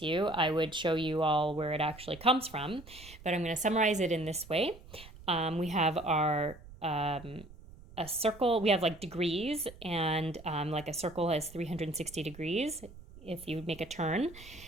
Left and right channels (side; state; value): right; noise; rumble, 19 dB below the sound